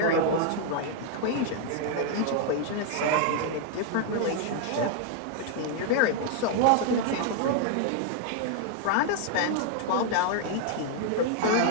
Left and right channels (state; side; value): different; both; correlation 0.00